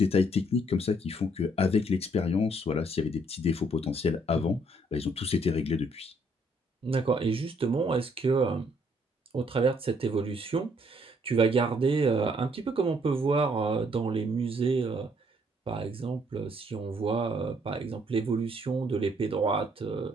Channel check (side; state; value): both; normal; correlation 0.67